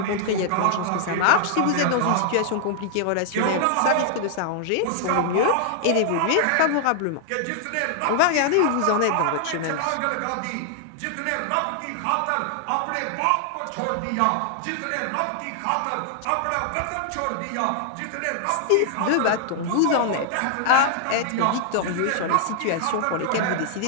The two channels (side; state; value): both; different; correlation 0.00